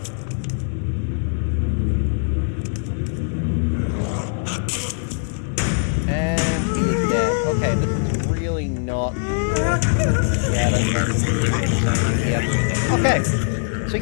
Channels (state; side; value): silent; right; 65 dB below the other